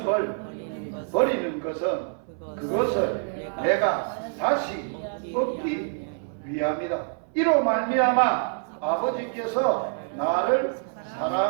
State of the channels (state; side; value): silent; left; 61 dB below the other